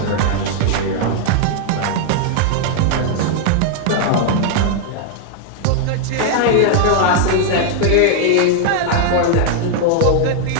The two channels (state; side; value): different; both; correlation 0.00